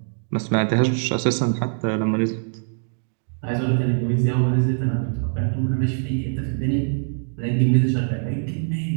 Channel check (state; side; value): silent; left; digital silence